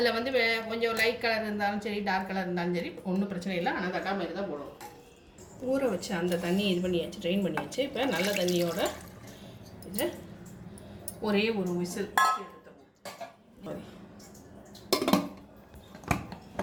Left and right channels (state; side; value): identical; both; correlation 1.00